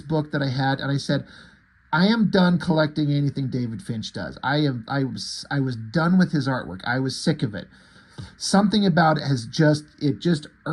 book that I had, and I said, I am done collecting anything David Finch does. I was done with his artwork. I was sick of it. Something about it just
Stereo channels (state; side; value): identical; both; correlation 1.00